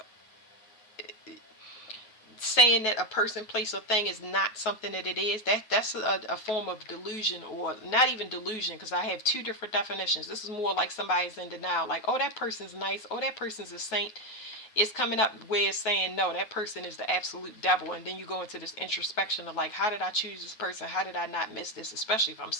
saying that a person, place, or thing is not something that it is. That's a form of delusion, or not even delusion, because I have 2 different definitions. This is more like somebody's in denial, like, oh, that person's nice, oh, that person's a saint, it's coming up where saying no, that person is the absolute devil. And then you go into this introspection of like, how did I choose this person? How did I not miss this? Especially if I'm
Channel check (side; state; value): right; late; 9.3 ms